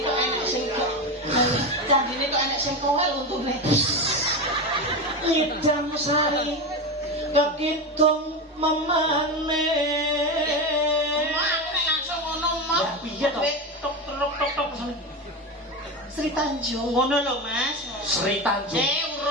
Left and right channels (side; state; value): both; normal; correlation 0.19